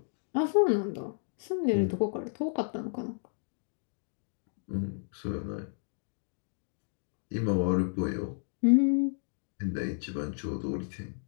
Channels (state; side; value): silent; right; digital silence